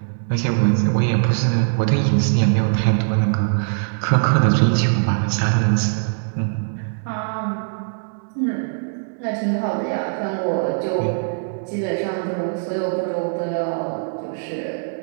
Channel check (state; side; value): silent; left; 65 dB below the other